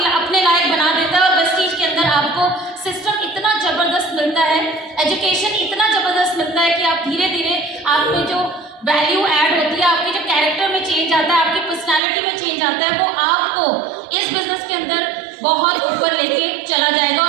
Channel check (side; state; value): left; drops out; at 12.0 s